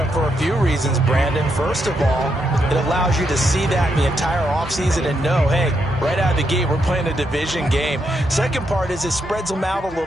for a few reasons, Brandon. First of all, it allows you to see that in the entire offseason and know, hey, right out of the gate, we're playing a division game. Second part is it spreads them out a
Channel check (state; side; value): normal; both; correlation 0.80